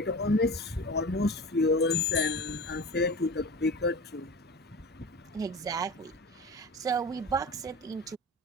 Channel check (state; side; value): normal; both; correlation 0.34